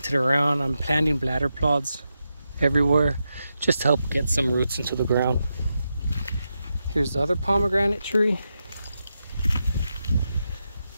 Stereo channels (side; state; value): both; inverted; correlation -0.87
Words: around. I'm planting bladder pods everywhere just to help get some roots into the ground. Here's the other pomegranate tree.